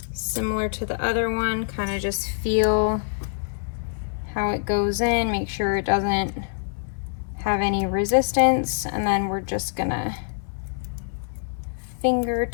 Similar to the other one, kind of just feel how it goes in, make sure it doesn't have any resistance, and then we're just gonna finger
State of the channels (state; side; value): silent; right; digital silence